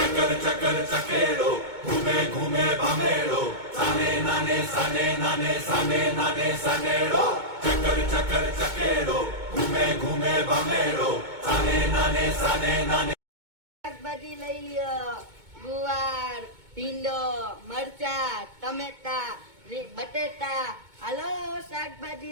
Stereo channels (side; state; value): left; late; 2.2 ms